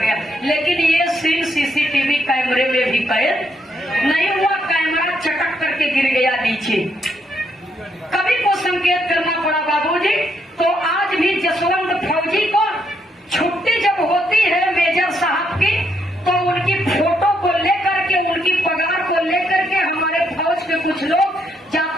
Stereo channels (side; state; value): both; normal; correlation 0.76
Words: लेकिन ये सीन सीसीटीवी कैमरे में भी कैद नहीं हुआ। कैमरा चटक करके गिर गया नीचे। कभी को संकेत करना पड़ा बाबूजी। तो आज भी जसवंत फौजी को छुट्टी जब होती है मेजर साहब की, तो उनकी फोटो को लेकर के, उनकी पगार को लेकर के हमारे फौज के कुछ लोग